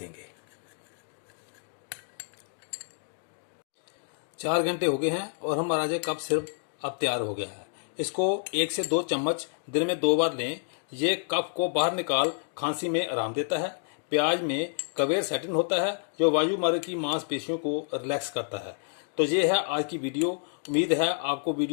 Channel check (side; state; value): right; silent; digital silence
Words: 4 घंटे हो गए हैं और हमारा जो कफ सिरप अब तैयार हो गया है। इसको 1 से 2 चम्मच दिन में 2 बार लें। ये कफ को बाहर निकाल खांसी में आराम देता है। प्याज में क्वेरसेटिन होता है जो वायुमार्ग की मांसपेशियों को रिलैक्स करता है। तो ये है आज की वीडियो। उम्मीद है आपको